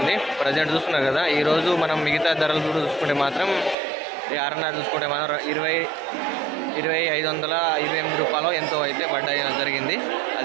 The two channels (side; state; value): left; drops out; at 3.8 s